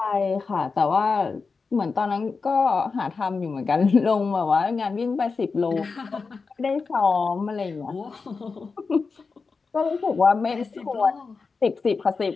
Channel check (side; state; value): right; quieter; 4.6 dB